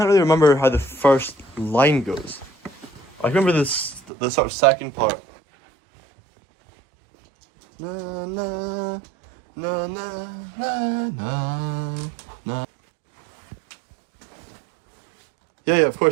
really remember how the first line goes. I remember the sort of second part. Na na na na na na na. Yeah, of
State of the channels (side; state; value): left; drops out; at 4.0 s